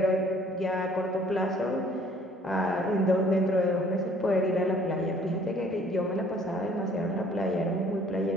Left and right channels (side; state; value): both; normal; correlation 0.57